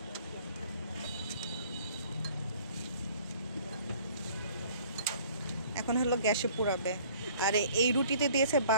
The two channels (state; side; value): inverted; both; correlation -0.54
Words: এখন হলো গ্যাসে পোড়াবে। আর এই রুটিতে দিয়েছে